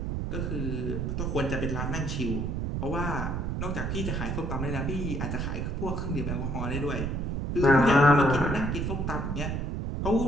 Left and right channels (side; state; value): right; noise; rumble, 1 dB below the sound